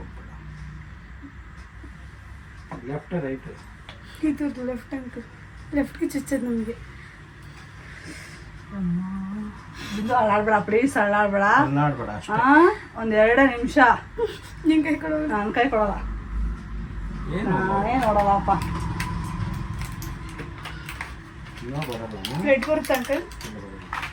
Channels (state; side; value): identical; both; correlation 1.00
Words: Left right? ಇದು ಲೆಫ್ಟ್ ಅಂಕಲ್. ಲೆಫ್ಟ್ಗೆ ಚುಚ್ಚೋದು ನಮಗೆ. ಬಿಂದು ಅಲ್ಲಾಡ್ಬೇಡ, ಪ್ಲೀಸ್ ಅಲ್ಲಾಡ್ಬೇಡ. ಅಲ್ಲಾಡ್ಬೇಡ ಅಷ್ಟೇ. ಒಂದು 2 ನಿಮಿಷ. ನಿನ್ ಕೈ ಕೊಡೋದು. ನನ್ನ ಕೈ ಕೊಡಲ್ಲ. ಏನು ನಾನೇ ನೋಡಲ್ಲಪ್ಪ. ಇನ್ನೂ ಬರಲ್ಲ. ಬ್ಲಡ್ ಬರುತ್ತೆ ಅಂಕಲ್.